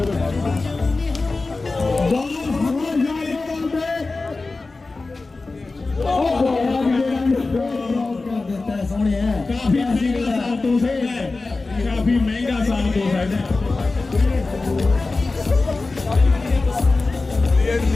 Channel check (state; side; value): quieter; right; 3.6 dB